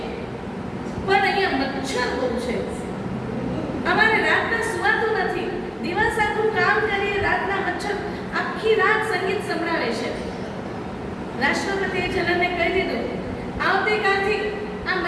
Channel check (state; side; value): identical; both; correlation 1.00